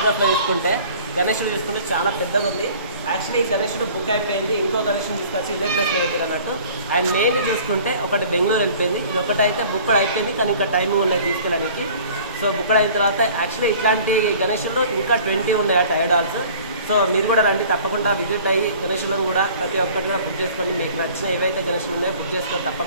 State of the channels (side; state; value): both; inverted; correlation -0.48